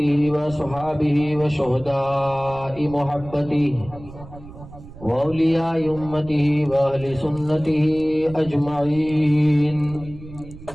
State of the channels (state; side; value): noise; right; rumble, 17 dB below the sound